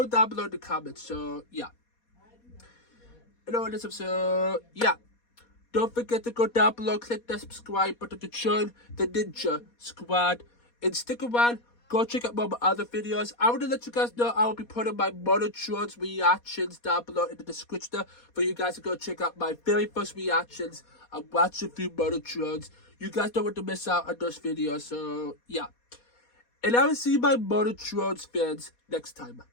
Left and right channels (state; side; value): late; right; 4.2 ms